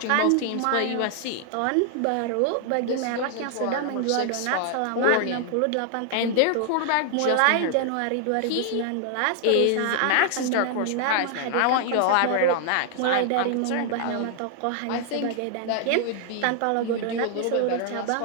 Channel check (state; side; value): different; both; correlation 0.00